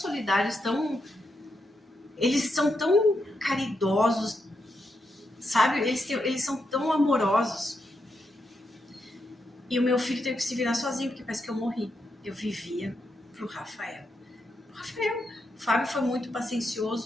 eles são tão caridosos, sabe? Eles são tão amorosos. E o meu filho teve que se virar sozinho, porque parece que eu morri. Eu vivia pro Rafael. O Fábio foi muito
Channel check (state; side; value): normal; both; correlation 0.83